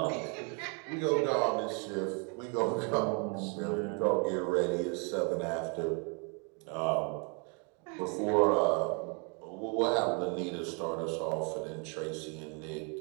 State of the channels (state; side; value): quieter; left; 35.9 dB